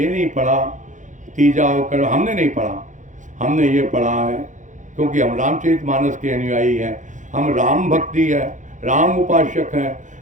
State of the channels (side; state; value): left; late; 0.36 ms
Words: नहीं पढ़ा, तीजा होकर हमने नहीं पढ़ा। हमने ये पढ़ा है क्योंकि हम रामचरितमानस के अनुयायी हैं, हम राम भक्ति है, राम उपासक हैं।